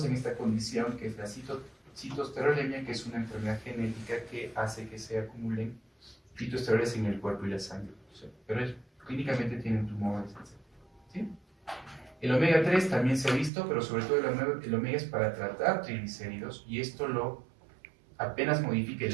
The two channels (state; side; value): drops out; left; at 13.5 s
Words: en esta condición que es la citoesterolemia, que es una enfermedad genética que hace que se acumulen fitoesteroles en el cuerpo y la sangre. Pero clínicamente tienen tumores, ¿sí? El omega 3 también se ha visto, pero sobre todo el omega es para tratar triglicéridos, y esto lo apenas modifica